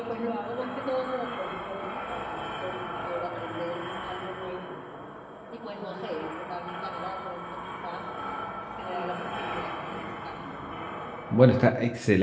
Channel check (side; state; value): both; identical; correlation 1.00